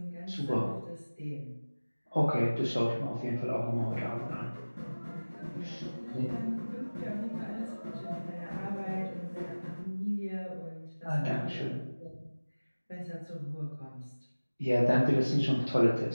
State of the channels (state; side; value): inverted; both; correlation -1.00